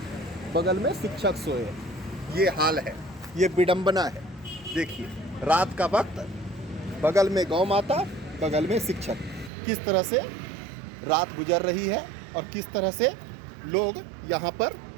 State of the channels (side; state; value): left; drops out; at 9.5 s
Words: बगल में शिक्षक सोए, ये हाल है, ये विडंबना है। देखिए, रात का वक्त, बगल में गौ माता, बगल में शिक्षक, किस तरह से रात गुजर रही है और किस तरह से लोग यहाँ पर